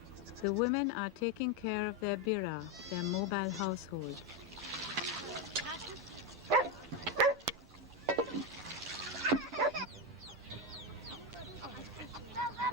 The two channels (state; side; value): normal; both; correlation 0.09